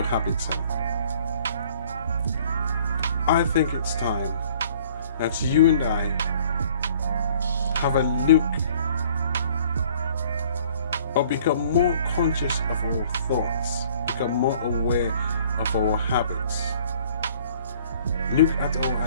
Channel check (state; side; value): inverted; both; correlation -0.56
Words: habits are? I think it's time that you and I have a look or become more conscious of our thoughts, become more aware of our habits, look at our